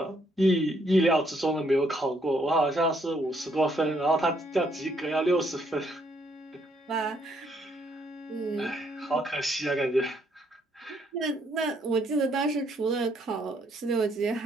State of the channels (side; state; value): both; normal; correlation 0.71